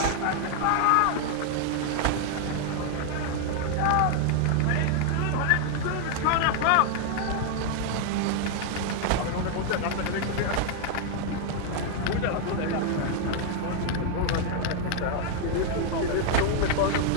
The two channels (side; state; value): both; different; correlation 0.00